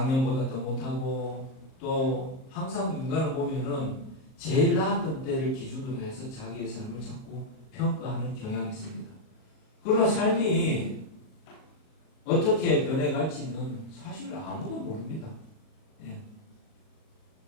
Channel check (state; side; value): late; right; 38 ms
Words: 더 못하고, 또 항상 인간을 보면은 제일 나았던 때를 기준으로 해서 자기의 삶을 자꾸 평가하는 경향이 있습니다. 그러나 삶이 어떻게 변해갈지는 사실 아무도 모릅니다.